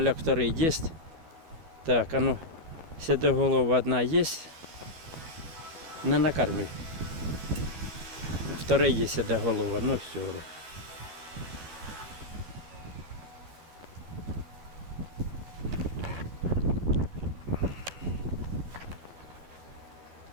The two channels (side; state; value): left; late; 12 ms